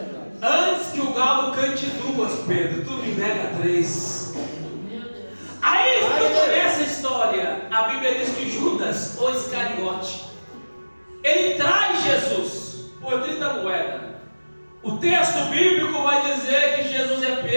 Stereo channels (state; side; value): inverted; both; correlation -1.00